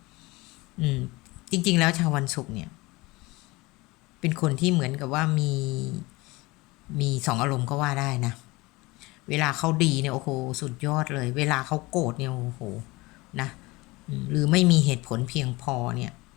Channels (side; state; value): right; quieter; 22.4 dB